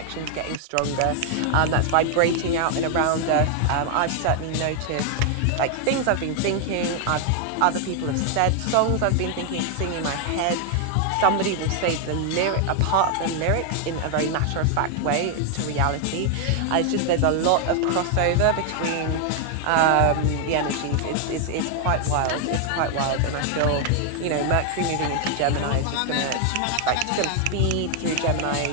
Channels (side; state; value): both; different; correlation 0.00